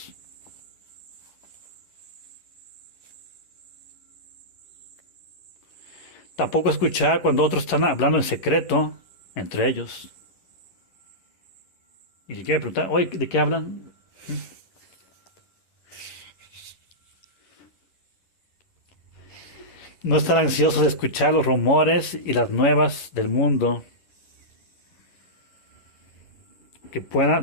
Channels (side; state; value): right; late; 11 ms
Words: Tampoco escuchar cuando otros están hablando en secreto entre ellos. Y si quiere preguntar, oye, ¿de qué hablan? No estar ansiosos de escuchar los rumores y las nuevas del mundo. Que